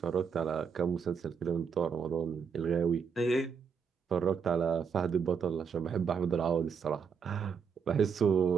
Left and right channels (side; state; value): left; quieter; 6.3 dB